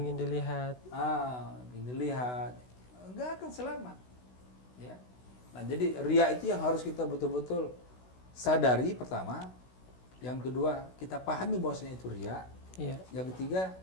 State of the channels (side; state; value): right; late; 16 ms